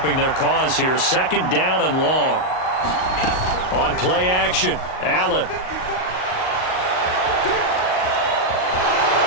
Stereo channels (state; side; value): late; right; 38 ms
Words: their cause here. 2nd down and long. On play action, Allen.